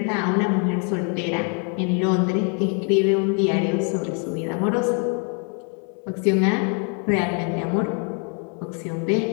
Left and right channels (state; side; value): quieter; right; 39.5 dB